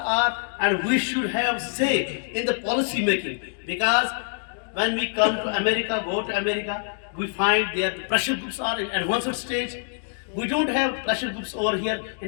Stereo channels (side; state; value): right; silent; digital silence